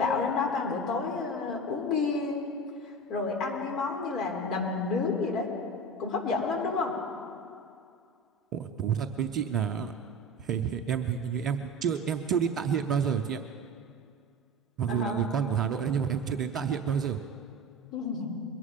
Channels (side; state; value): both; normal; correlation 0.31